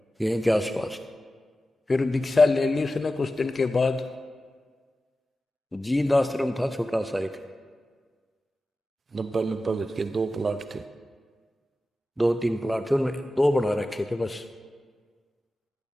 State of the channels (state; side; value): normal; both; correlation 0.94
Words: यहीं के आसपास। फिर दीक्षा ले ली उसने। कुछ दिन के बाद जीद आश्रम था छोटा सा, एक 90 गज के 2 प्लाट थे, 2-3 प्लाट थे, उनमें 2 बना रखे थे बस।